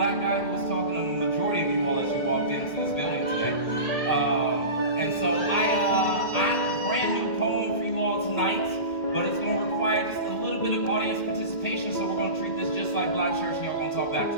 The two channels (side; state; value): right; late; 2.1 ms